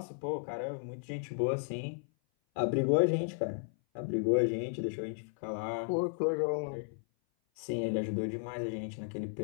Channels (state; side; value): silent; right; 55 dB below the other